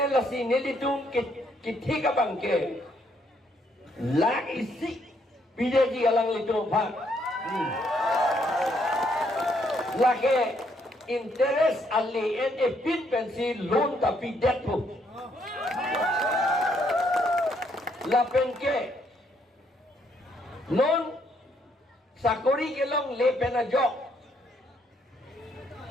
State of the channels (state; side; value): normal; both; correlation 0.71